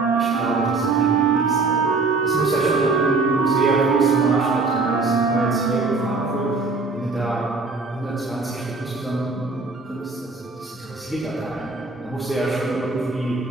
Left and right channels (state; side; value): quieter; left; 3.9 dB